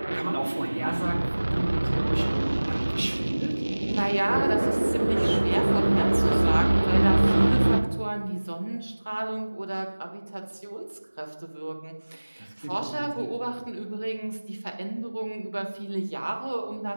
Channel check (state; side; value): inverted; both; correlation -1.00